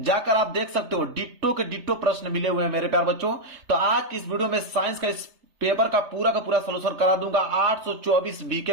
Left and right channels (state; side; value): late; left; 3.3 ms